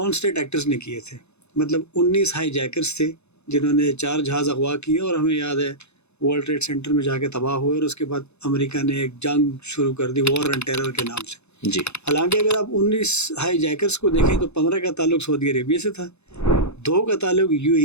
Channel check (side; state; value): right; late; 0.81 ms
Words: स्टेट एक्टर्स ने किए थे। मतलब 19 हाई जैकर्स थे जिन्होंने 4 जहाज़ अगवा किए और हमें याद है वर्ल्ड ट्रेड सेंटर में जाके तबाह हुए और उसके बाद अमेरिका ने एक जंग शुरू कर दी वॉर ऑन टेरर के नाम से। जी, हालांकि अगर आप 19 हाई जैकर्स को देखें तो 15 का ताल्लुक सऊदी अरेबिया से था, 2 का ताल्लुक